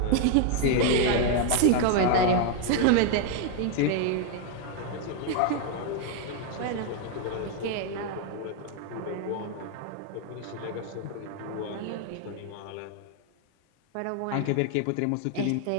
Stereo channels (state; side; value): different; both; correlation 0.00